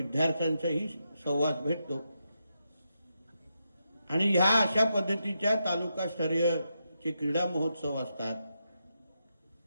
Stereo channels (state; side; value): inverted; both; correlation -0.85